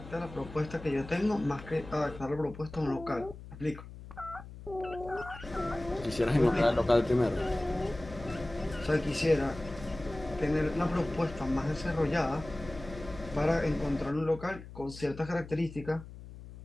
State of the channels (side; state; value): left; noise; hum, 15 dB below the sound